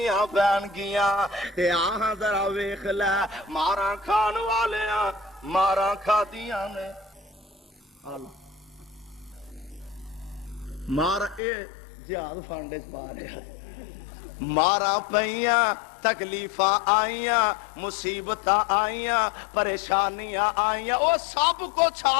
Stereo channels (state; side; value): drops out; right; at 11.4 s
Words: پین گیاں۔ تے آہاں ذرا ویکھ لے مارا کھان والیاں مارا کھادیاں نے، مارا اے جہاد فنڈ چ پا رہا، مارا پئیاں، تکلیفاں آئیاں، مصیبتاں آئیاں، پریشانیاں آئیاں، وہ سب کچھ